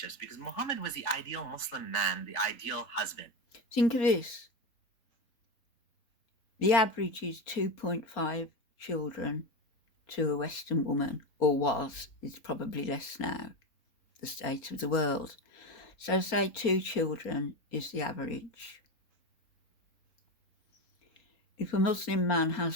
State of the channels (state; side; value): late; right; 4.3 ms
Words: because Muhammad was the ideal Muslim man, the ideal husband. Think of this. The average is 2.5 children to a Western woman, or was. It's probably less now, the state of the world. So say 2 children is the average. If a Muslim man has